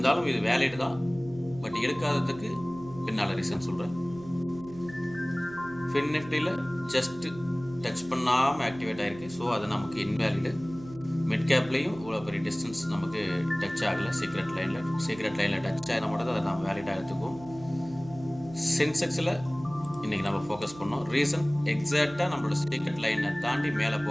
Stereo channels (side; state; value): right; noise; hum, 17 dB below the sound